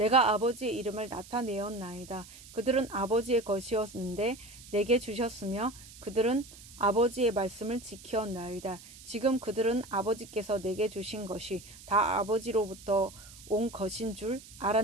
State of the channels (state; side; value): noise; right; hiss, 19 dB below the sound